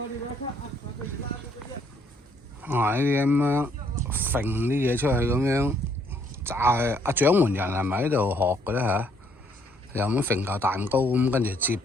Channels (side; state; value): both; normal; correlation 0.67